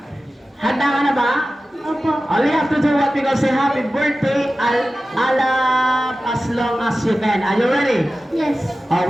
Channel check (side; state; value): both; normal; correlation 0.95